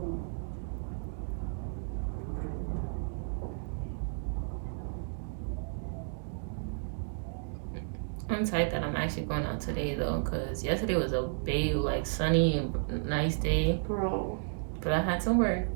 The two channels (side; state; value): left; silent; digital silence